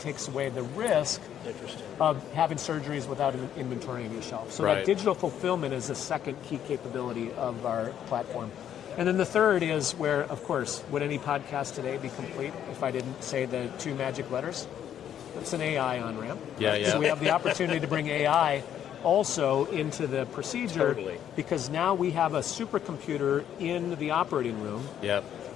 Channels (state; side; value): quieter; right; 9.9 dB